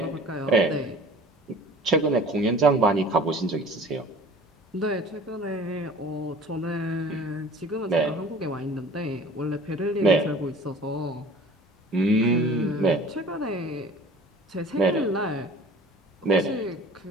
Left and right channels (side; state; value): both; normal; correlation 0.44